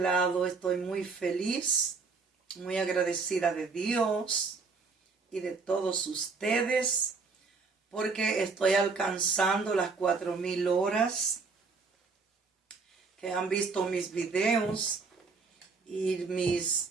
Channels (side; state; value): left; quieter; 4.5 dB